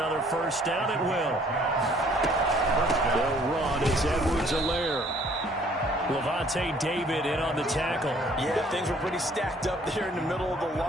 first down. It will. They'll run. It's Edwards-Helaire. Levante David in on the tackle. Yeah, things were pretty stacked up there in the middle of the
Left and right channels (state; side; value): normal; both; correlation 0.59